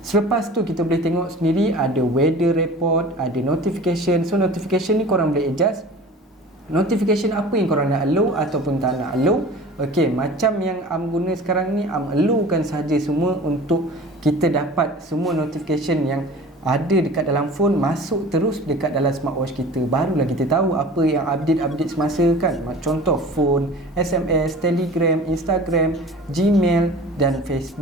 selepas tu kita boleh tengok sendiri ada weather report, ada notification. So notification ni korang boleh adjust notification apa yang korang nak allow ataupun tak nak allow. Okey, macam yang Am guna sekarang ni, Am allowkan saja semua untuk kita dapat semua notification yang ada dekat dalam phone masuk terus dekat dalam smartwatch kita. Barulah kita tahu apa yang update semasa kan. Contoh phone, SMS, Telegram, Instagram, Gmail dan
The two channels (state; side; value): normal; both; correlation 0.41